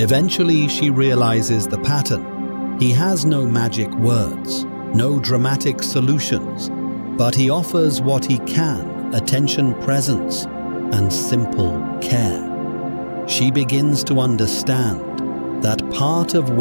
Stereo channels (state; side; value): inverted; both; correlation -1.00